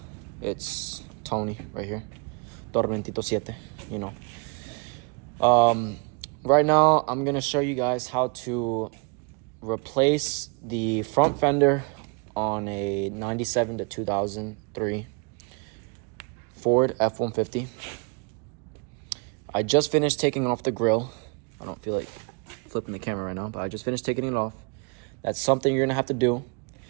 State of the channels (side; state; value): left; quieter; 34.8 dB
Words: It's Tony right here. Tormentito 7, you know. Right now, I'm going to show you guys how to replace the front fender on a 97 to 2003 Ford F-150. I just finished taking off the grill. I don't feel like flipping the camera right now, but I just finished taking it off. That's something you're going to have to do.